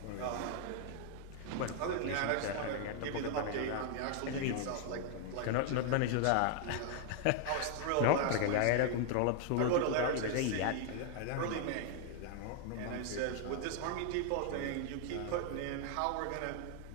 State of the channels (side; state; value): both; different; correlation 0.00